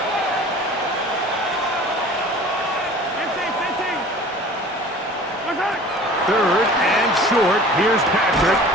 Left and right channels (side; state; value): both; normal; correlation 0.44